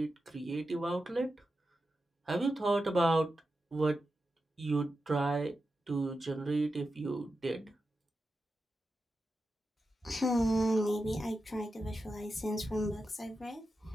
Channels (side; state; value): both; normal; correlation 0.90